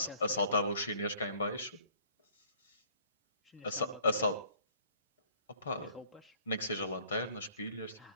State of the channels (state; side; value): inverted; both; correlation -0.58